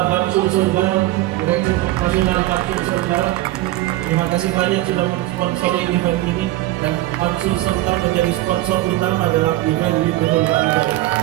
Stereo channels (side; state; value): left; quieter; 16.5 dB